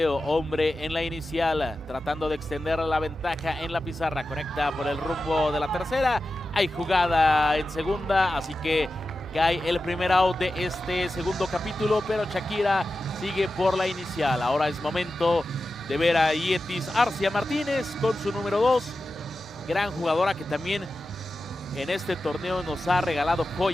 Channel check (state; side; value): normal; both; correlation 0.93